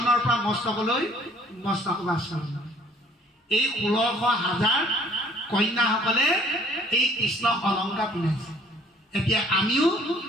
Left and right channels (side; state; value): both; normal; correlation 0.57